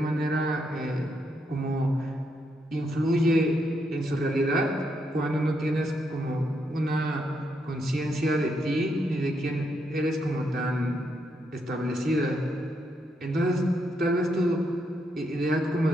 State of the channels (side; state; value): both; normal; correlation 0.79